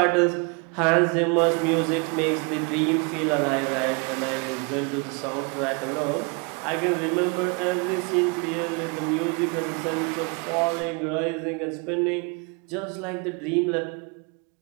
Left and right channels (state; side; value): quieter; left; 32.7 dB